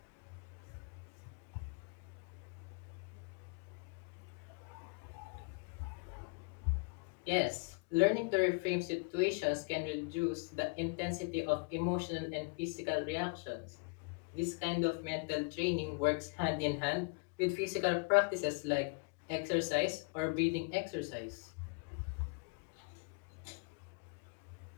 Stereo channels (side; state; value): right; quieter; 31.7 dB